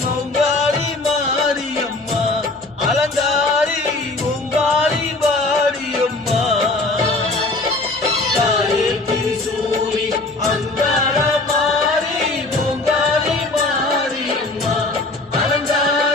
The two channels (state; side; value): quieter; right; 3.1 dB